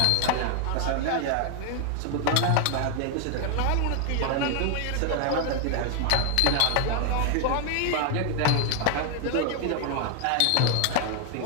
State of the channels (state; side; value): different; both; correlation 0.00